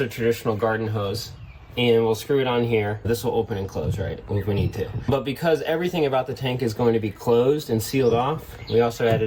a traditional garden hose. And we'll screw it on here. This will open and close, right, if we need to. But because everything about the tank is going to be closed and sealed off, we also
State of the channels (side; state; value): both; identical; correlation 1.00